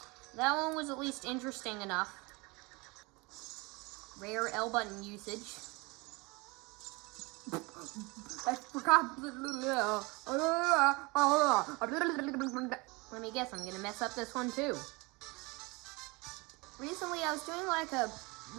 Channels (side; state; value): left; quieter; 26.0 dB